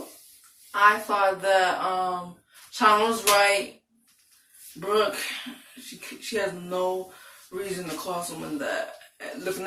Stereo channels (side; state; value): both; identical; correlation 1.00